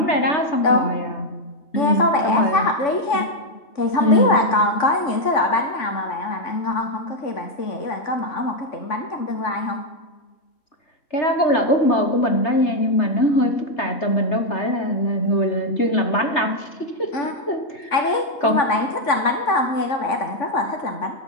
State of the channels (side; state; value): right; late; 3.5 ms